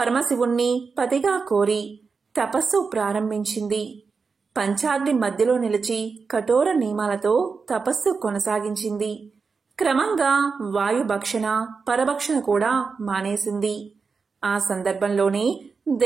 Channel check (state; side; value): quieter; left; 4.9 dB